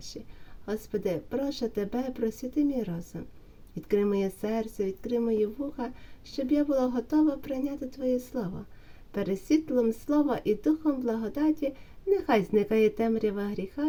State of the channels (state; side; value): identical; both; correlation 1.00